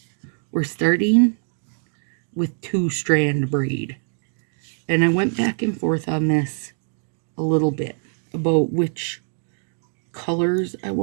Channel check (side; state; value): left; silent; 61 dB below the other